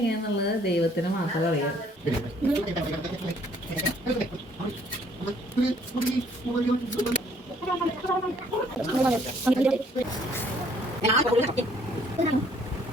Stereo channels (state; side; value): normal; both; correlation 0.62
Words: ദൈവത്തിന് മാത്രമേ അറിയാം.